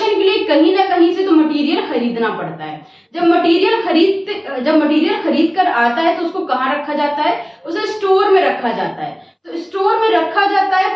के लिए कहीं ना कहीं से तो मटेरियल खरीदना पड़ता है। जब मटेरियल खरीद कर आता है तो उसको कहाँ रखा जाता है? उसे स्टोर में रखा जाता है। तो स्टोर में रखा जाता है,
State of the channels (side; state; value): both; identical; correlation 1.00